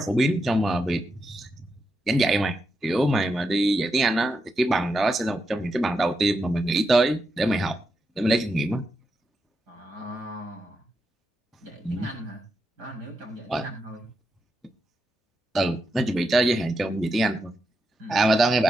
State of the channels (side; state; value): both; normal; correlation 0.85